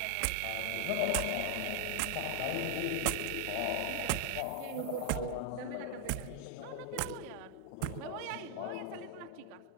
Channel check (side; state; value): both; different; correlation 0.00